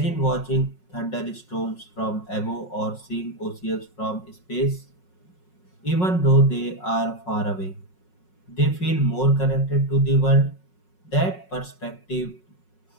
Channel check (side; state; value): right; late; 5.5 ms